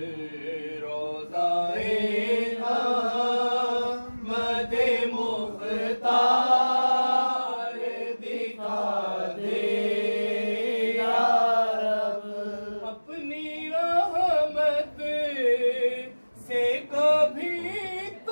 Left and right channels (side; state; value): both; inverted; correlation -1.00